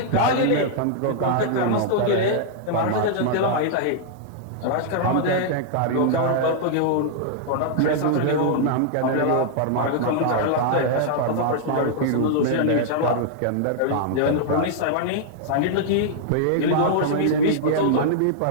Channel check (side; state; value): both; different; correlation -0.01